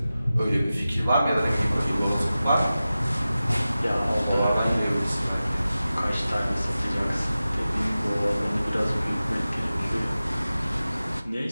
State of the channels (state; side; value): inverted; both; correlation -0.95